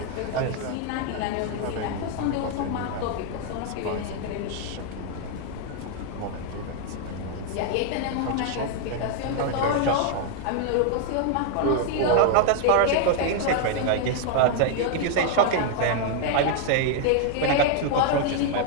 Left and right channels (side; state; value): both; different; correlation 0.00